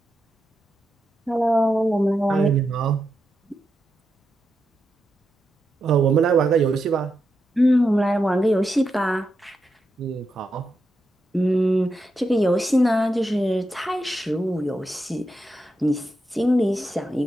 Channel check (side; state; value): both; normal; correlation 0.86